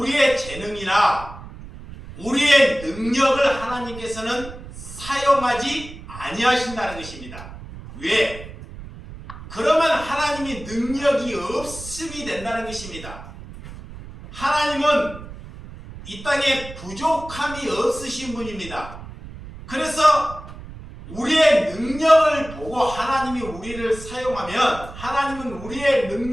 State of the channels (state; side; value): noise; right; rumble, 14 dB below the sound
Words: 재능이나 우리의 능력을 하나님께서는 사용하지 아니하신다는 것입니다. 왜? 그러면 하나님이 능력이 없음이 된다는 것입니다. 하나님은 이 땅에 부족함이 없으신 분입니다. 그래서 우리의 능력을 보고 하나님이 우리를 사용하면 하나님은 우리의